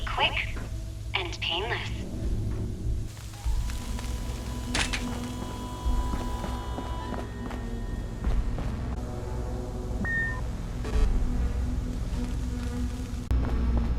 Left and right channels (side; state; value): both; identical; correlation 1.00